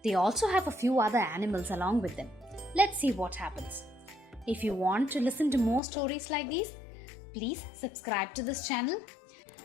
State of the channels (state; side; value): drops out; right; at 5.8 s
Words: They also have a few other animals along with them. Let's see what happens. If you want to listen to more stories like these, please subscribe to this channel